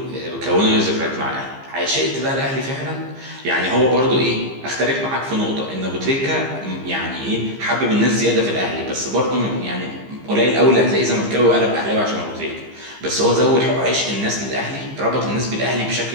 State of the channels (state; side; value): late; left; 15 ms